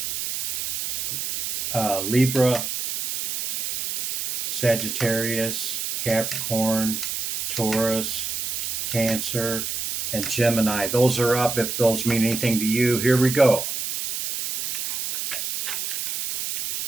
Libra, Sagittarius, Capricorn, Taurus, Cancer, and Gemini. Those are up if those mean anything to you. Here we go.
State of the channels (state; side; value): noise; right; hiss, 4 dB below the sound